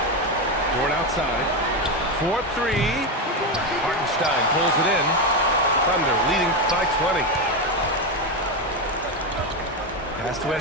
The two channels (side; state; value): both; normal; correlation 0.11